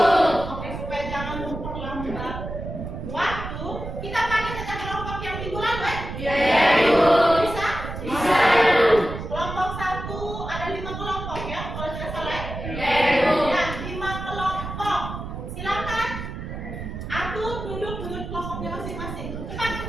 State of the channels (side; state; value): right; noise; rumble, 7 dB below the sound